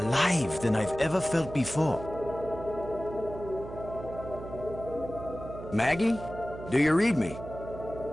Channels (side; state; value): right; noise; hum, 12 dB below the sound